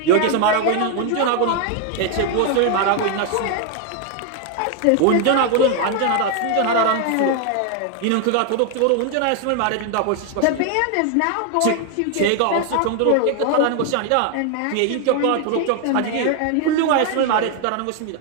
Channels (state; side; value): different; both; correlation 0.01